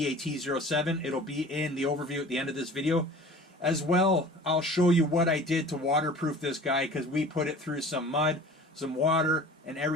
It'll be in the overview at the end of this video. As well, I'll show you what I did to waterproof this guy, because we put it through some mud, some water, and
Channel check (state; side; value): normal; both; correlation 0.43